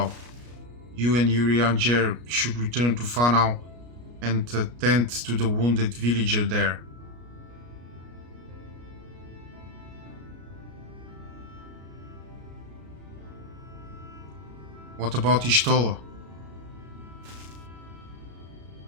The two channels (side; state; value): left; late; 33 ms